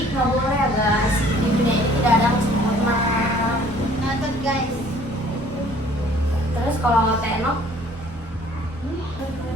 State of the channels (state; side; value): normal; both; correlation 0.56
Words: nggak boleh ya guys. Di dunia ini tidak ada yang sempurna. Nonton guys. Terus kalau Tenok